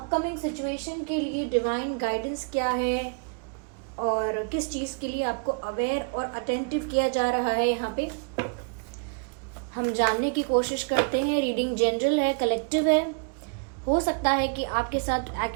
सिचुएशन के लिए डिवाइन गाइडेंस क्या है और किस चीज़ के लिए आपको अवेयर और अटेंटिव किया जा रहा है, यहाँ पे हम जानने की कोशिश करते हैं। रीडिंग जनरल है, कलेक्टिव है, हो सकता है कि आपके साथ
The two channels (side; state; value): left; quieter; 37.9 dB